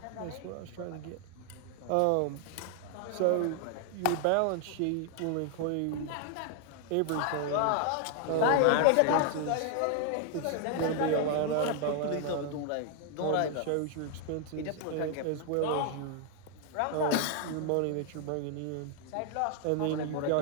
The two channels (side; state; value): both; different; correlation 0.00